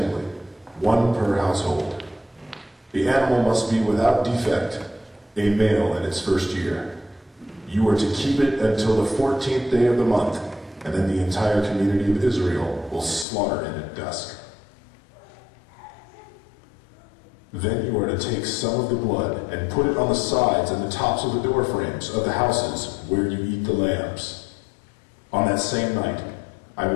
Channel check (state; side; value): drops out; right; at 13.2 s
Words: one per household. The animal must be without defect, a male in its first year. You are to keep it until the 14th day of the month, and then the entire community of Israel will slaughter it at dusk. Then you are to take some of the blood and put it on the sides and the tops of the door frames of the houses where you eat the lambs. On that same night, I